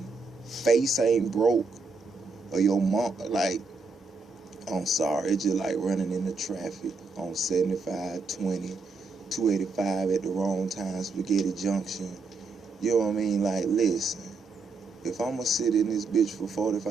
face ain't broke, or your mom, like, I'm sorry, it's just like running into traffic on 75, 20, 285 at the wrong time, Spaghetti Junction. You know what I mean? Like, listen, if I'm gonna sit in this bitch for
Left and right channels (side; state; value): left; quieter; 4.1 dB